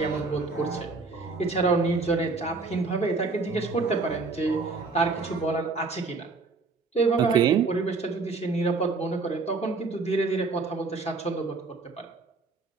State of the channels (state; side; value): quieter; left; 4.0 dB